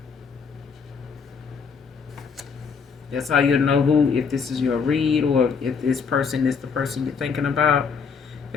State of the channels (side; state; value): right; quieter; 5.8 dB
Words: That's how you know if this is your read, or if this person is the person you're thinking about.